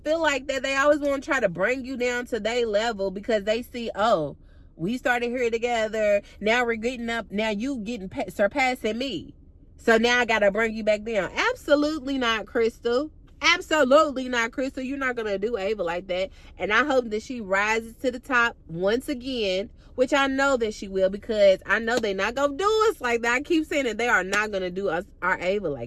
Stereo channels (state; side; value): identical; both; correlation 1.00